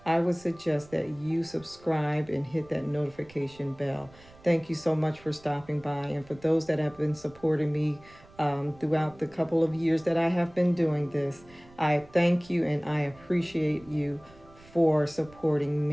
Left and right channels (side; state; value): right; noise; rumble, 24 dB below the sound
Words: I would suggest that you subscribe and hit that notification bell. Thank you so much for stopping by. And for those that have been supporting me throughout the couple of years that I have been doing this, I thank you and I appreciate you for supporting